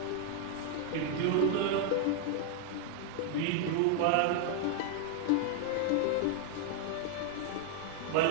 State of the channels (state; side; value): different; both; correlation 0.00